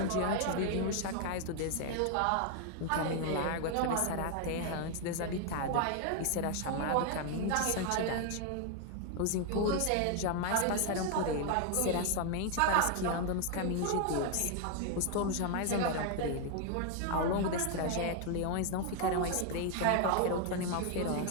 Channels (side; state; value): both; different; correlation 0.00